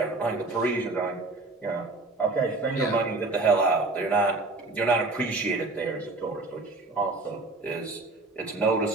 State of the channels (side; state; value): left; quieter; 3.2 dB